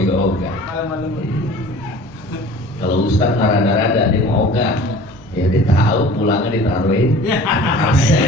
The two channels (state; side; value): normal; both; correlation 0.44